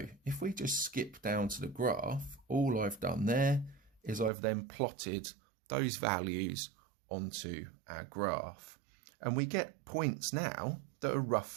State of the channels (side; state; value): left; drops out; at 4.3 s